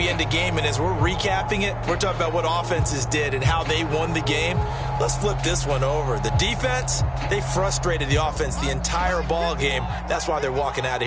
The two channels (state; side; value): identical; both; correlation 1.00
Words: end a game, and as we're recapping it, we're talking about what offenses did and how they won the game. Let's flip this one over. The defense, they frustrated the offense the entire ball game. That's why they're walking out of